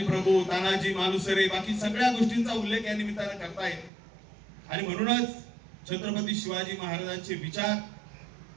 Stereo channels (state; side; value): drops out; left; at 3.9 s